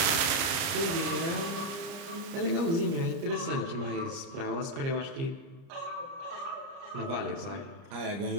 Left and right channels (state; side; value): late; left; 30 ms